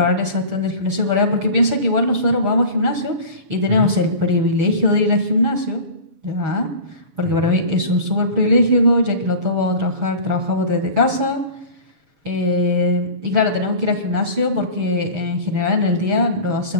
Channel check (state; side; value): late; left; 7.0 ms